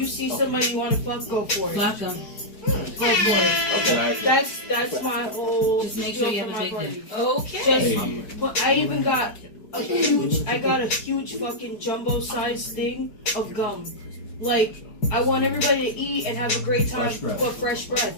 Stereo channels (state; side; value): late; right; 4.7 ms